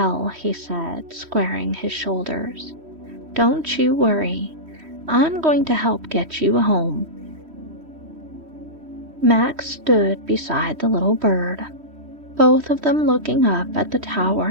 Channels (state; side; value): late; left; 3.1 ms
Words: he said, squaring his shoulders, "don't you worry. I'm going to help get you home." Max stood beside the little bird, both of them looking up at the